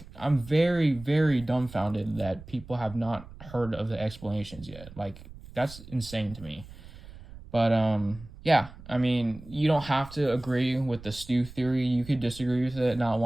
I'm very, very dumbfounded that people have not heard of the explanations yet. Like, that's insane to me. But yeah, I mean, you don't have to agree with the Stu theory. You could disagree with it, not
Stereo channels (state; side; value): noise; right; rumble, 17 dB below the sound